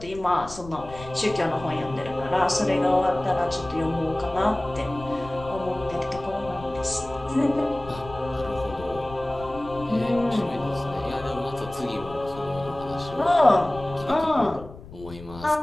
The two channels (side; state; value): left; noise; rumble, 16 dB below the sound